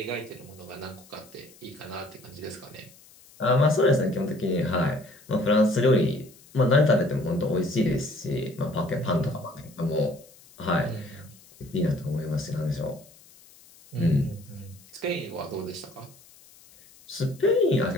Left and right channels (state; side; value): noise; left; hiss, 25 dB below the sound